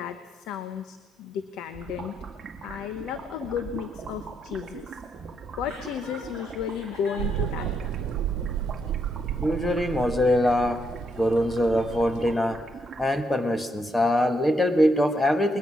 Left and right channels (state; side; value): normal; both; correlation 0.77